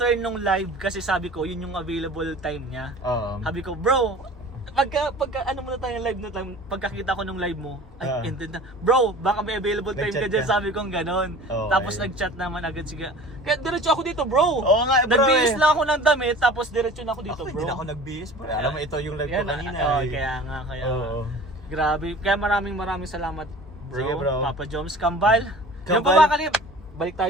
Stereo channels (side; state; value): both; normal; correlation 0.42